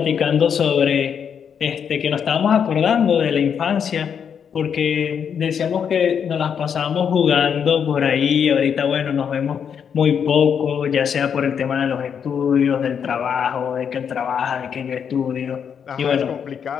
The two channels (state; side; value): quieter; right; 7.5 dB